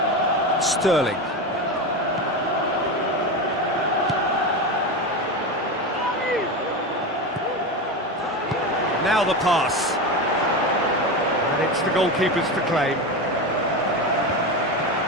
Sterling. Now the pass. And it's the goalkeeper's to claim.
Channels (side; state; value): both; normal; correlation 0.20